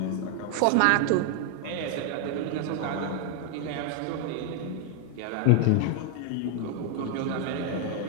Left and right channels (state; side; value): different; both; correlation 0.00